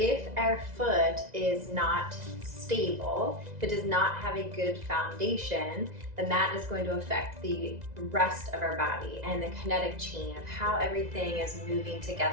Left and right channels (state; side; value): late; left; 2.0 ms